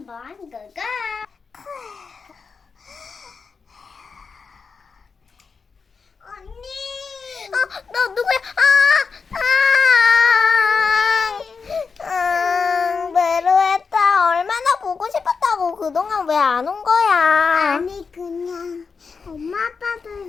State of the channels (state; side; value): quieter; right; 5.2 dB